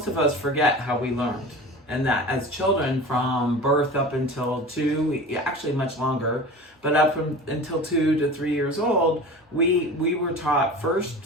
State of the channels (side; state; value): both; normal; correlation 0.35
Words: of us forget how we learned, and that as children from birth up until 2, actually much longer, but up until 2 to 3 years old, we were taught first